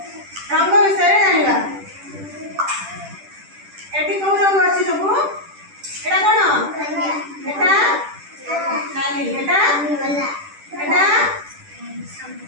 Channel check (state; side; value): late; left; 10 ms